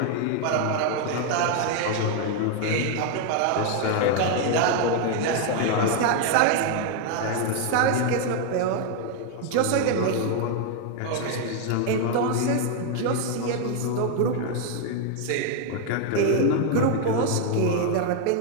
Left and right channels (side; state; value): both; different; correlation 0.01